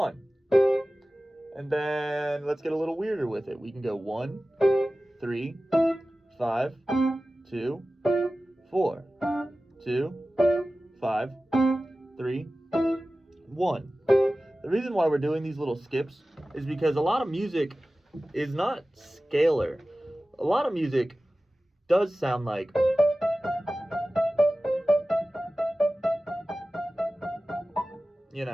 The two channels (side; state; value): both; normal; correlation 0.96